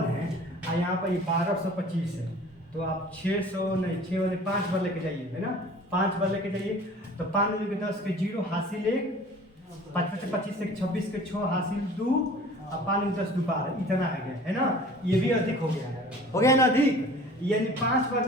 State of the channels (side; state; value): both; normal; correlation 0.46